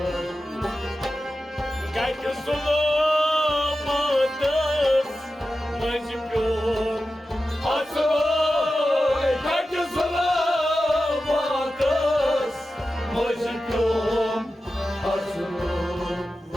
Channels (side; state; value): both; normal; correlation 0.93